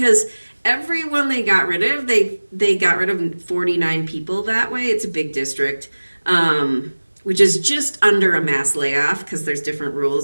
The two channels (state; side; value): inverted; both; correlation -1.00